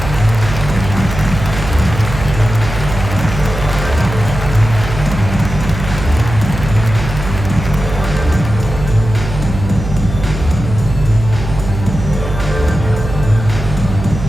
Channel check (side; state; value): right; noise; hum, 7 dB below the sound